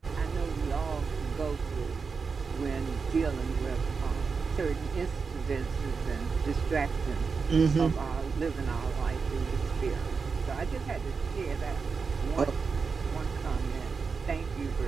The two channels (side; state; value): left; quieter; 5.1 dB